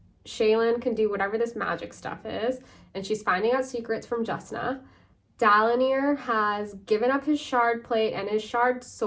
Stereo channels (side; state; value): both; identical; correlation 1.00